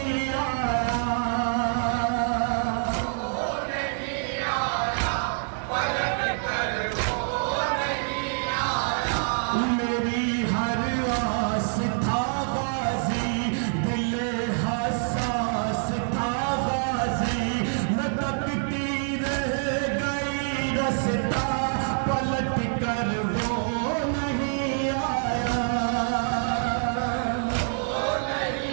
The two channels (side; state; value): left; silent; 61 dB below the other